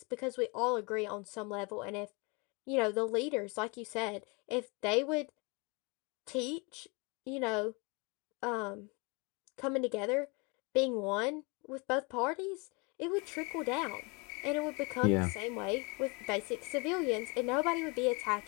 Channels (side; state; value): right; quieter; 30.0 dB